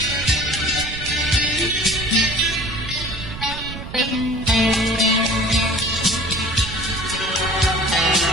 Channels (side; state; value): right; noise; rumble, 10 dB below the sound